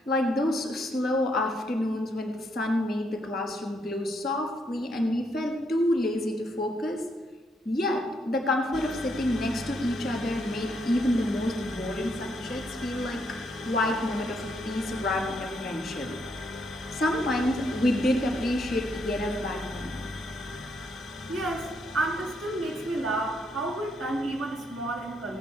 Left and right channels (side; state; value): both; normal; correlation 0.75